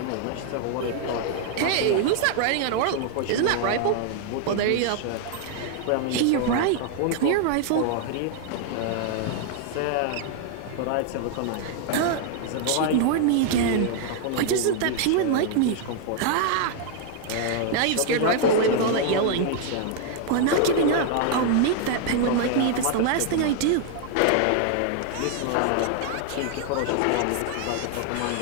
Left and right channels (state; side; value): different; both; correlation 0.00